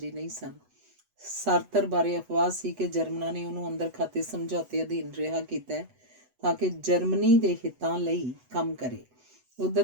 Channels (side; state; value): left; late; 8.0 ms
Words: ਨਹੀਂ ਸਨ। ਸਾਰਤਰ ਬਾਰੇ ਅਫਵਾਹ ਸੀ ਕਿ ਜਰਮਨਾਂ ਨੇ ਉਹਨੂੰ ਅੰਦਰ ਖਾਤੇ ਸਮਝੌਤੇ ਅਧੀਨ ਰਿਹਾ ਕੀਤਾ ਹੈ ਤਾਂ ਕਿ ਜਰਮਨੀ ਦੇ ਹਿੱਤਾਂ ਲਈ ਕੰਮ ਕਰੇ। ਉਧਰ